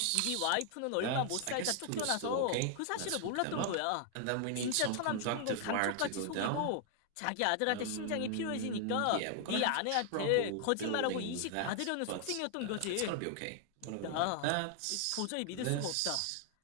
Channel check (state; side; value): different; both; correlation 0.00